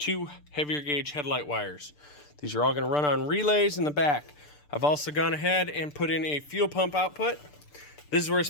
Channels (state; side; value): late; right; 6.8 ms